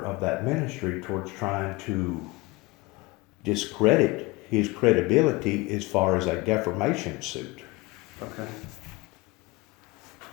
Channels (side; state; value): right; quieter; 23.2 dB